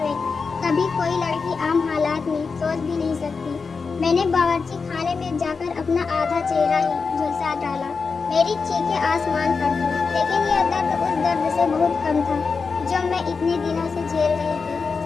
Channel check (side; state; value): right; quieter; 4.9 dB